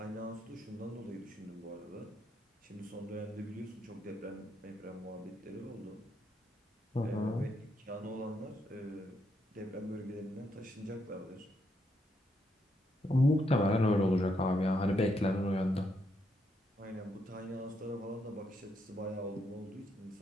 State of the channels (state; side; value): normal; both; correlation 0.77